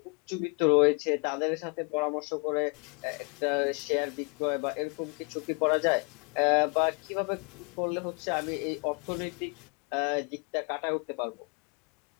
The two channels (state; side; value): quieter; right; 35.7 dB